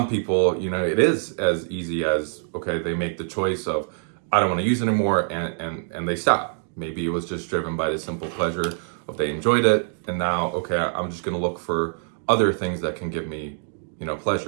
people, it is as easy as, okay, they make the choice of, I don't want to use it anymore, and they stop. Maybe it was just driven by the simple pleasure of they enjoyed it, and now, okay, I'm just going to look for other things that can give me,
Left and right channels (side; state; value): left; silent; digital silence